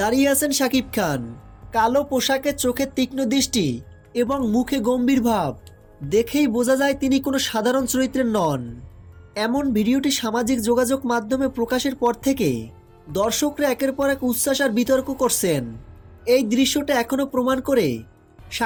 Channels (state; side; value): identical; both; correlation 1.00